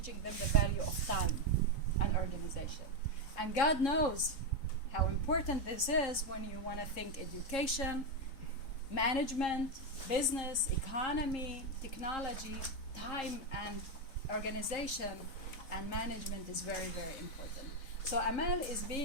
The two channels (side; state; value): right; late; 3.7 ms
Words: them the value of time and organization. And God knows how important this is when you want to think education, management, business, economy, technology, time, and organization. and management is very, very important. So Amal is